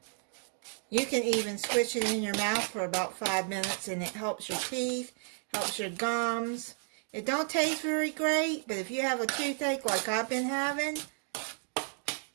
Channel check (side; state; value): left; silent; 56 dB below the other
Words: You can even squish it in your mouth for about 5 minutes and it helps your teeth, helps your gums. It don't taste very great, but if you have a toothache like I've been having,